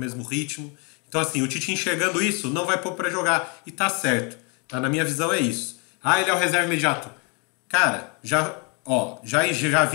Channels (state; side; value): quieter; right; 33.6 dB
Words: ritmo. Então, assim, o Tite enxergando isso, não vai pôr para jogar. E tá certo. Tá? Na minha visão é isso. Ah, ele é o reserva imediato. Cara, já